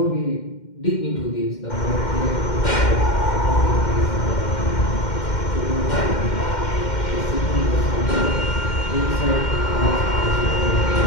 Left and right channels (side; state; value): right; late; 2.1 ms